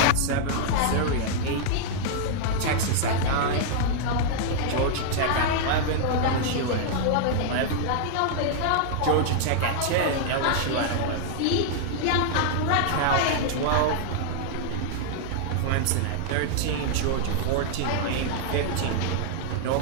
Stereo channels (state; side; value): different; both; correlation -0.01